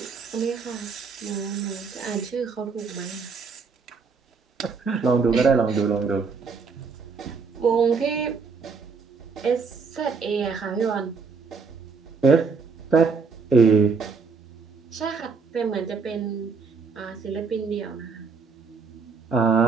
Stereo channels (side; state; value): left; quieter; 5.1 dB